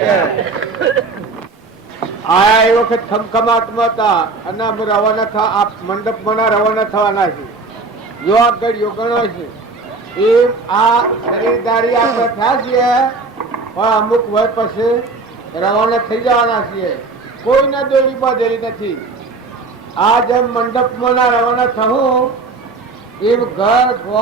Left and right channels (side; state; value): left; quieter; 3.9 dB